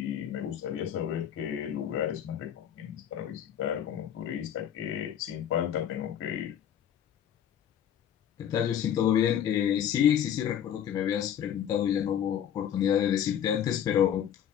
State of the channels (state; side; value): quieter; right; 9.6 dB